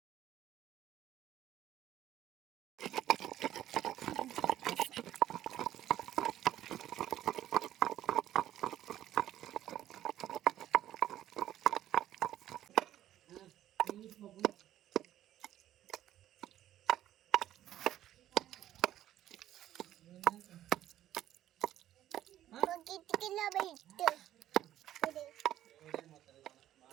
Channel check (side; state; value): left; quieter; 12.5 dB